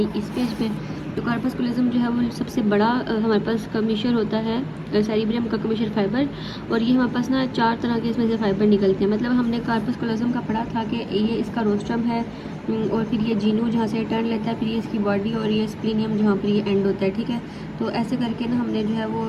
इस पेज पे। तो कार्पस्कुलज्म जो है वो सबसे बड़ा हमारे पास कमीशन होता है सेरिब्रम का कमीशन फाइबर, और ये हमारे पास ना 4 तरह के इसमें से फाइबर निकलते हैं। मतलब हमने कार्पस्कुलज्म का पढ़ा था कि ये इसका रोस्ट्रम है, और फिर ये जीनू जहाँ से टर्न लेता है, फिर ये इसकी बॉडी, और ये स्प्लीनियम जहाँ पर ये एंड होता है, ठीक है। तो ऐसे करके ना हमने जो है वो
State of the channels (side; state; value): both; identical; correlation 1.00